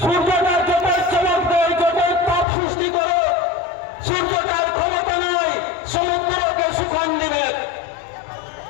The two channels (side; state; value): right; drops out; at 2.5 s